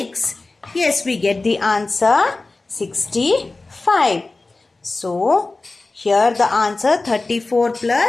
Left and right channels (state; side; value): quieter; right; 3.3 dB